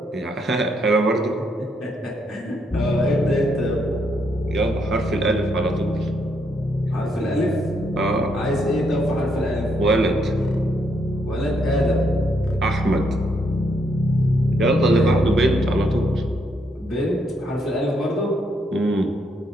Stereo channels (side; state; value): both; normal; correlation 0.75